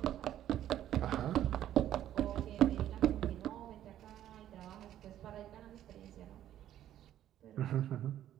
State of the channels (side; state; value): left; quieter; 11.8 dB